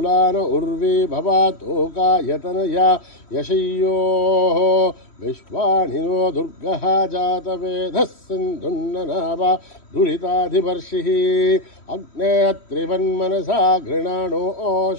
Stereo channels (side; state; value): right; late; 3.1 ms